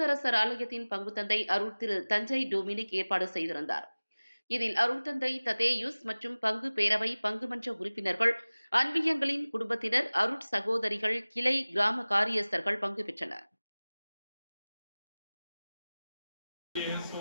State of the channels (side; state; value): both; inverted; correlation -0.99